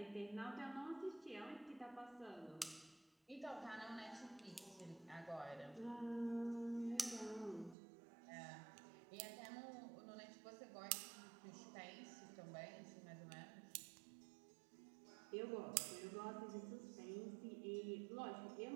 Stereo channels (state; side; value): drops out; left; at 7.8 s